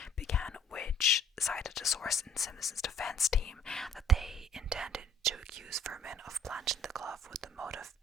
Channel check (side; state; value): both; normal; correlation 0.56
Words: began, which cited a source in Simpson's defense team that they intended to accuse Furman of planting the glove with the motive